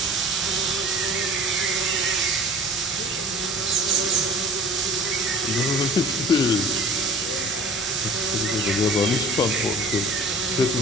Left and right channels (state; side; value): normal; both; correlation 0.45